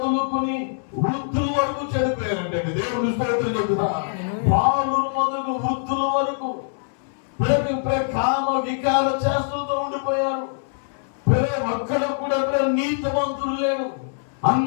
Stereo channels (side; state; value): right; silent; 63 dB below the other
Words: వృద్ధుల వరకు చనిపోయారంటే. దేవుని స్తోత్రం చెప్తున్నా. బాలురు మొదలు వృద్ధుల వరకు కామ వికార చేష్టలతో ఉండిపోయారు. ఒక్కడ కూడా నీతిమంతులు లేడు.